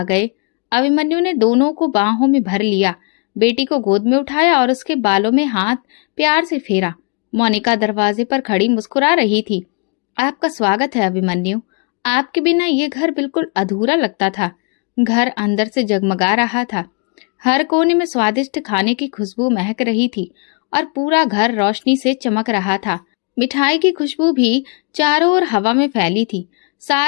गए। अभिमन्यु ने दोनों को बाहों में भर लिया, बेटी को गोद में उठाया और उसके बालों में हाथ प्यार से फेरा। मोनिका दरवाजे पर खड़ी मुस्कुरा रही थी। आपका स्वागत है अभिमन्यु। आपके बिना ये घर बिल्कुल अधूरा लगता था। घर अंदर से जगमगा रहा था। हर कोने में स्वादिष्ट खाने की खुशबू महक रही थी और पूरा घर रोशनी से चमक रहा था। मिठाई की खुशबू भी चारों ओर हवा में फैली थी।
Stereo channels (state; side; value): quieter; right; 36.6 dB